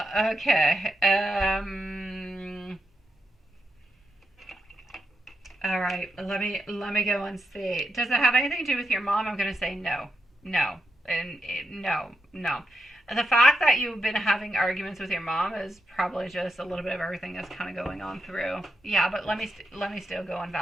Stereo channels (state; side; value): normal; both; correlation 0.84